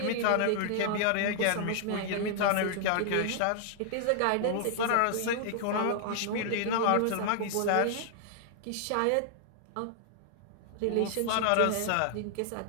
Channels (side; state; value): both; different; correlation -0.01